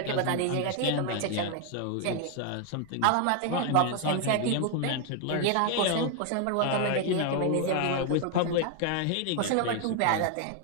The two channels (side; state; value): both; different; correlation 0.01